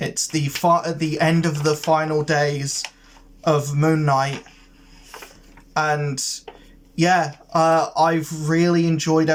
at the end of the final days of Moon Knight, and yeah, I've really enjoyed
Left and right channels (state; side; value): identical; both; correlation 1.00